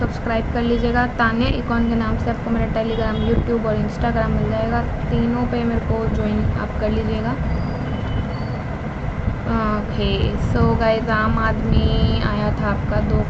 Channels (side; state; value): both; identical; correlation 1.00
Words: कर लीजिएगा। तान्या इकॉन के नाम से आपको मेरा टेलीग्राम, यूट्यूब और इंस्टाग्राम मिल जाएगा। तीनों पे मेरे को ज्वाइन आप कर लीजिएगा। ओके, सो गाइस, आम आदमी आया था आपका 2